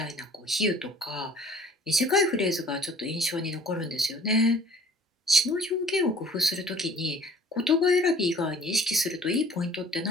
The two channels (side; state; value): both; normal; correlation 0.51